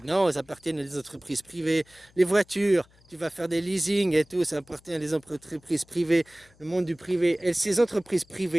Non, ils appartiennent à des entreprises privées. Les voitures, tu vas faire des leasing et tout, ça appartient à des entreprises privées, le monde du privé. Et ces entreprises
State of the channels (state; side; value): noise; left; hum, 30 dB below the sound